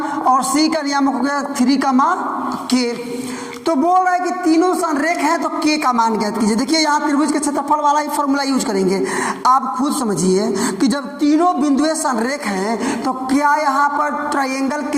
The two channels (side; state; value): both; identical; correlation 1.00